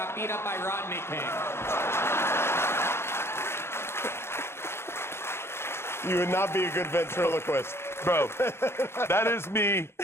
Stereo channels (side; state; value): right; late; 0.12 ms